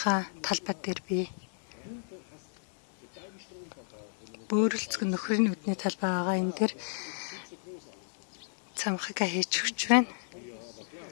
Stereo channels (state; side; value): silent; right; digital silence